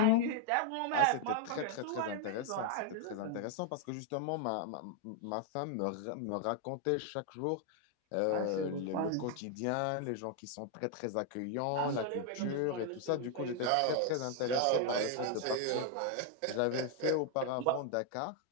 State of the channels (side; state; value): both; different; correlation 0.00